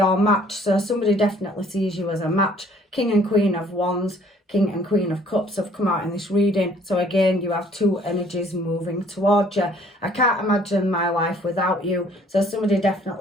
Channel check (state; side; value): normal; both; correlation 0.58